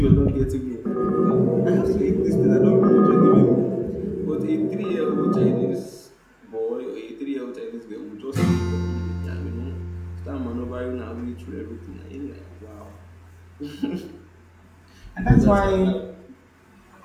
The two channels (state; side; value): identical; both; correlation 1.00